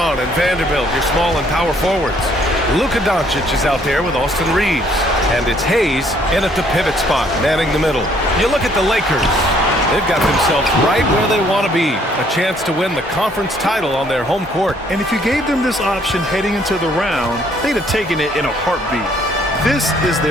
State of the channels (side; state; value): both; normal; correlation 0.64